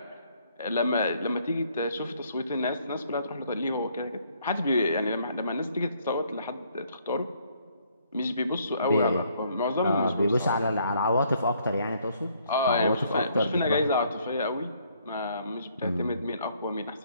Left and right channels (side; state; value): both; inverted; correlation -0.67